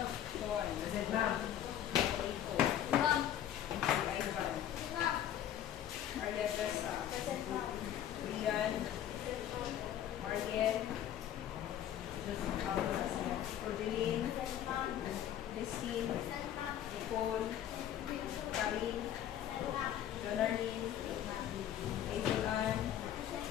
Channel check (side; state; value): right; quieter; 10.8 dB